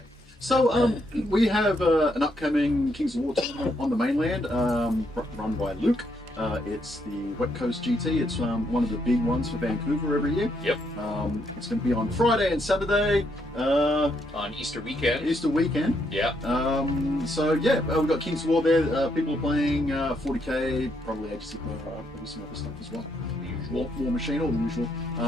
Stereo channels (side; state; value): both; normal; correlation 0.75